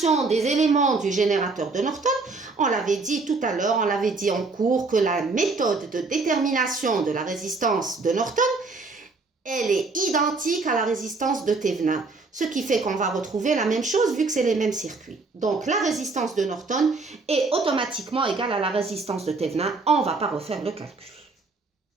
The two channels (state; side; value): quieter; left; 3.8 dB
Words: des éléments du générateur de Norton, on l'avait dit tout à l'heure, on l'avait dit en cours que la méthode de détermination de la résistance de Norton, elle est identique à la résistance de Thévenin. Ce qui fait qu'on va retrouver la même chose vu que c'est les mêmes circuits. Donc la résistance de Norton est automatiquement égale à la résistance de Thévenin. On ne va pas refaire le calcul.